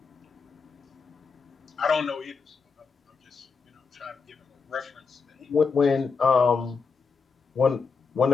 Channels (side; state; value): right; quieter; 5.1 dB